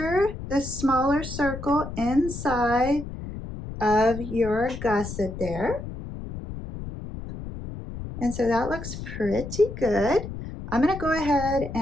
the smaller circle inside of your gusset there. And so that looks pretty good. I'm going to go ahead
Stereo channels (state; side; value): noise; left; rumble, 9 dB below the sound